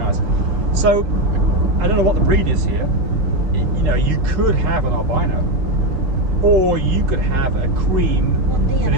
eyes. So I don't know what the breed is here. You know, you could have an albino, or you could have a cream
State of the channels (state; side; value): late; left; 7.6 ms